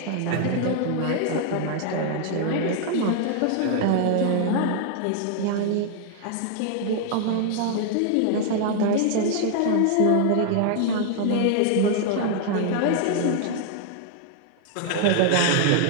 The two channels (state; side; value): different; both; correlation 0.00